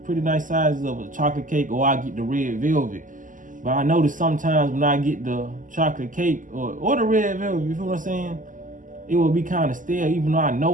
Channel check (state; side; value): late; left; 0.38 ms